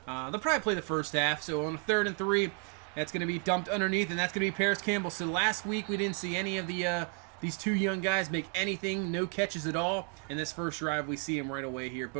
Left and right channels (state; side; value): quieter; left; 37.6 dB